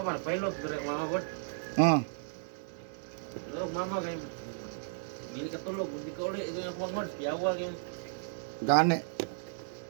pilot dire mama bot. Oh, Pero mama kayo, hindi ka tulog, hindi ka ulit, ito yung kumangod, piyawa kayo, gani.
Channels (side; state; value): left; silent; 55 dB below the other